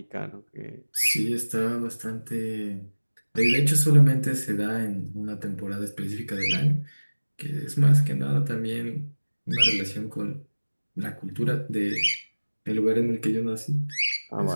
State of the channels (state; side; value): inverted; both; correlation -1.00